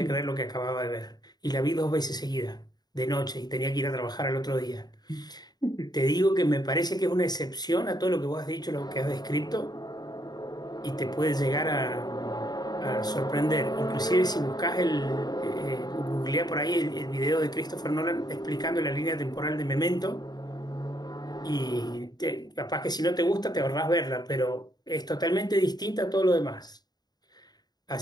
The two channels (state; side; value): late; right; 0.20 ms